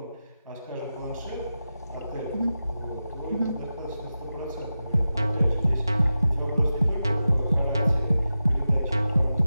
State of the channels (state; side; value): inverted; both; correlation -0.92